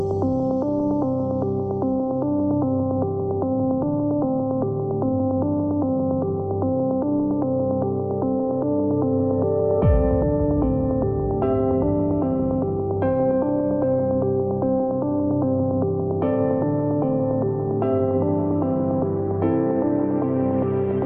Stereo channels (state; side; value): identical; both; correlation 1.00